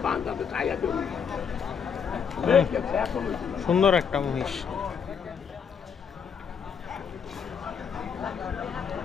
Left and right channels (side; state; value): right; quieter; 6.9 dB